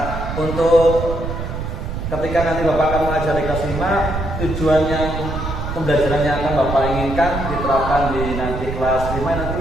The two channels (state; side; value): noise; right; rumble, 5 dB below the sound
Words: untuk ketika nanti Bapak akan mengajar di kelas 5, tujuan yang pembelajaran yang akan Bapak inginkan diterapkan di nanti kelas 5 nanti